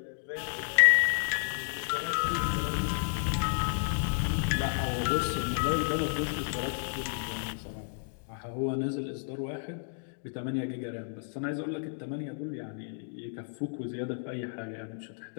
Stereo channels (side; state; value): right; silent; digital silence